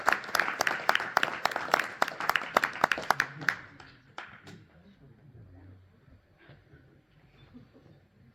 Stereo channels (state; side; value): identical; both; correlation 1.00